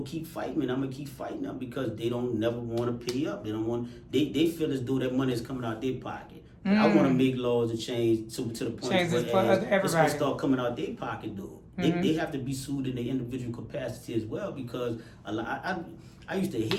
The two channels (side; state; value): both; identical; correlation 1.00